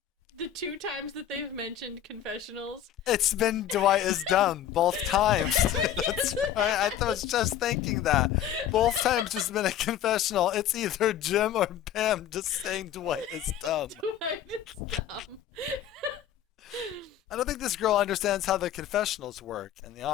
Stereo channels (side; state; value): right; quieter; 10.5 dB